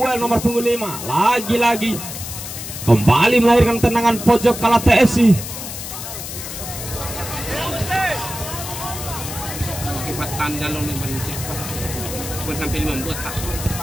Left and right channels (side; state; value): left; noise; hiss, 8 dB below the sound